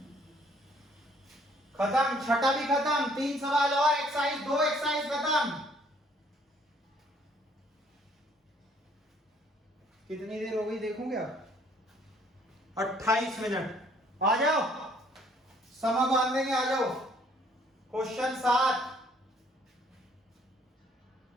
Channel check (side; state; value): both; normal; correlation 0.62